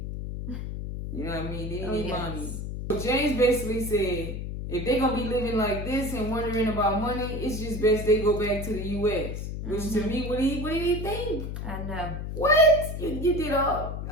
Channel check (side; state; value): left; noise; hum, 5 dB below the sound